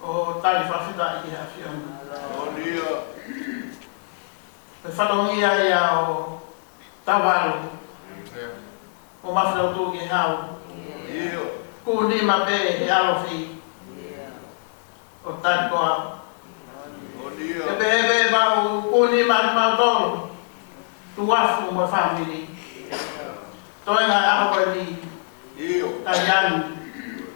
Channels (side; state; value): right; silent; 63 dB below the other